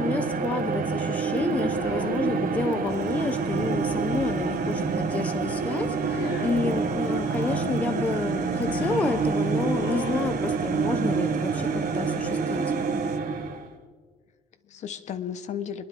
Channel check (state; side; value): normal; both; correlation 0.59